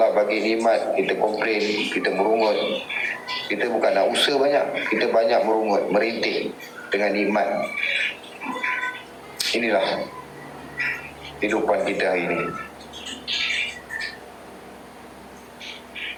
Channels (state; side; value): identical; both; correlation 1.00